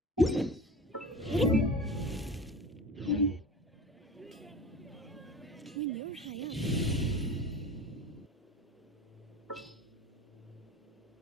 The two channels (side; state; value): both; normal; correlation 0.35